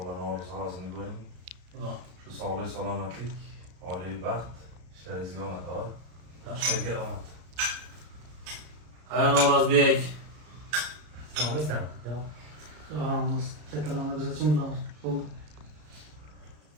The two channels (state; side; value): late; left; 33 ms